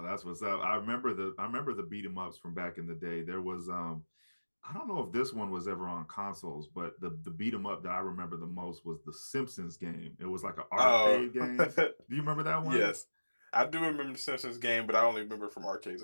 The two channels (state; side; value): inverted; both; correlation -1.00